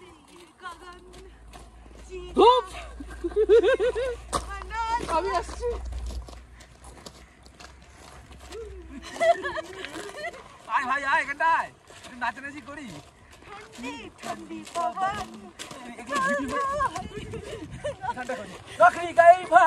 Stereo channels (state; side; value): identical; both; correlation 1.00